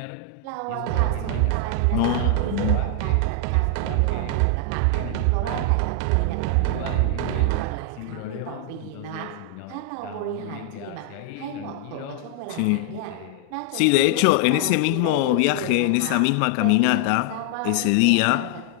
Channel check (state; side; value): different; both; correlation 0.00